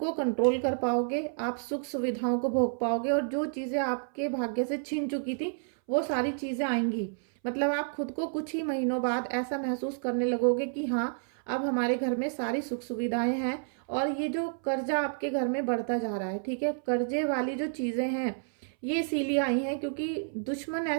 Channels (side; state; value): left; silent; 58 dB below the other